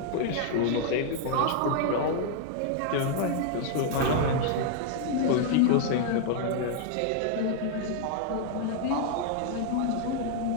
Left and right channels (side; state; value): both; different; correlation -0.01